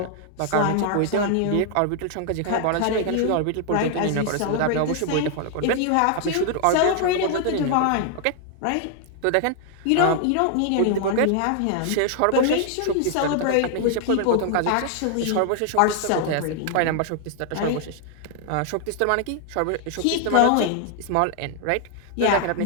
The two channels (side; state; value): both; different; correlation 0.00